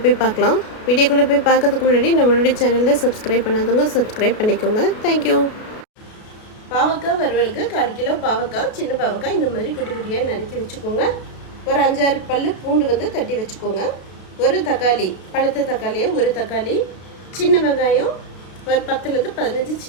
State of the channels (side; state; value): right; late; 33 ms